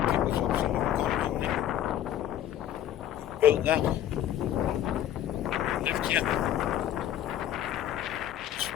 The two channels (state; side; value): quieter; right; 11.4 dB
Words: Built that. Lived here.